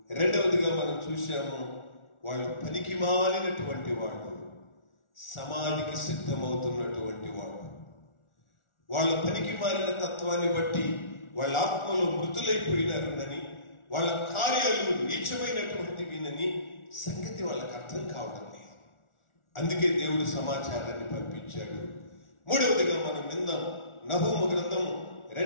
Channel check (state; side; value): late; right; 1.4 ms